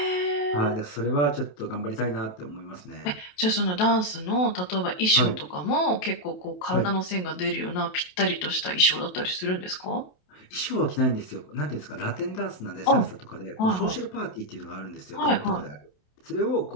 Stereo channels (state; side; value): late; right; 28 ms